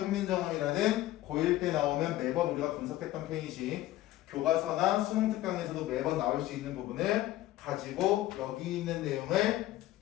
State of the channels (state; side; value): quieter; right; 15.4 dB